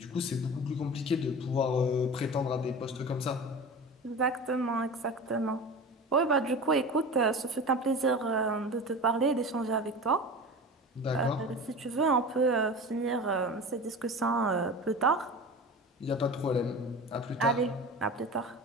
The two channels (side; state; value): both; normal; correlation 0.33